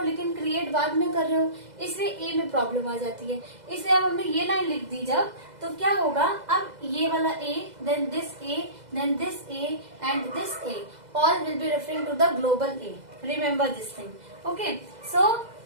लेकिन क्रिएट बाद में कर रहे हो, इसलिए a में प्रॉब्लम आ जाती है। इसलिए अब हमने ये लाइन लिख दी जब, तो क्या होगा, अब ये वाला a, then this a, then this a and this a, all will be referring to the global A. Remember this thing, okay. So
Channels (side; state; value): left; late; 2.0 ms